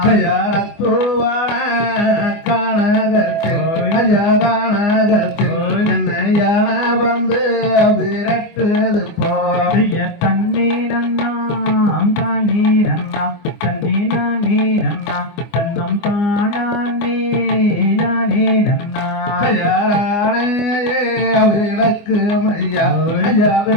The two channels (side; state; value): right; late; 24 ms